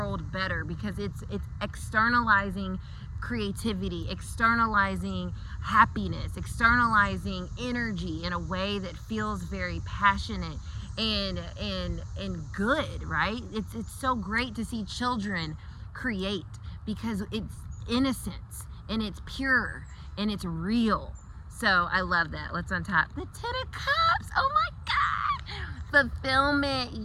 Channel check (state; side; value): identical; both; correlation 1.00